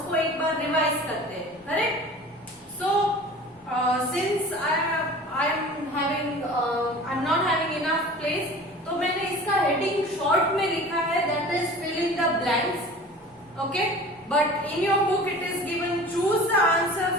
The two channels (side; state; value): both; normal; correlation 0.41